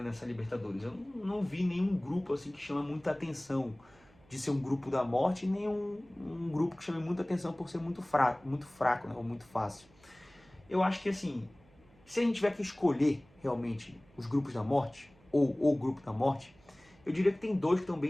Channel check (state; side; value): noise; right; hum, 29 dB below the sound